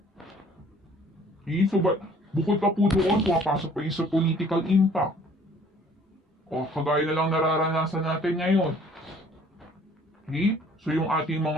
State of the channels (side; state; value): both; normal; correlation 0.56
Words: Okay? So bukod pa po doon, pumapasok pa yung sa political impact. O kagaya na lang nararanasan natin ngayon. Okay? So yung ating